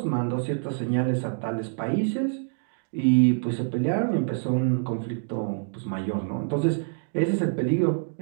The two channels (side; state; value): left; silent; digital silence